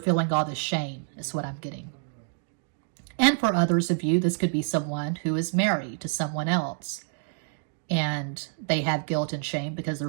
feeling all this shame, is what I'm getting. And for others of you, this could be someone who is married to someone else, and they have guilt and shame because they're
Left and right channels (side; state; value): left; silent; 60 dB below the other